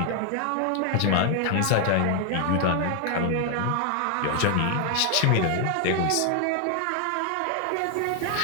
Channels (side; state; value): both; different; correlation 0.00